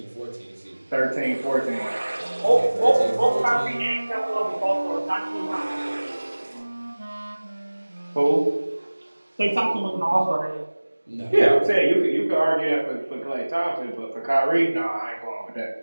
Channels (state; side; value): inverted; both; correlation -1.00